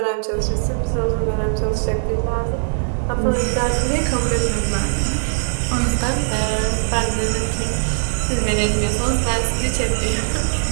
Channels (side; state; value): left; silent; digital silence